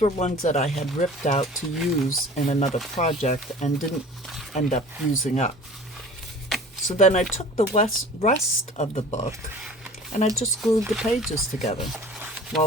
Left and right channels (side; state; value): both; normal; correlation 0.43